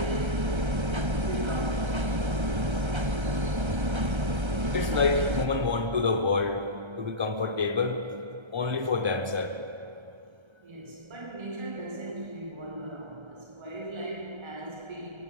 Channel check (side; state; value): left; late; 1.3 ms